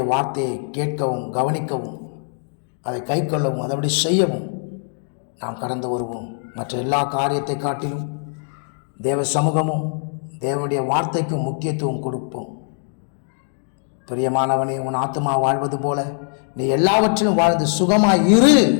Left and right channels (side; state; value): right; silent; digital silence